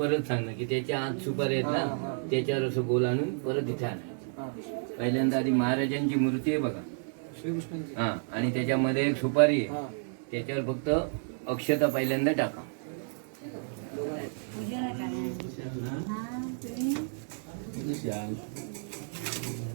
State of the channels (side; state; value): left; silent; 57 dB below the other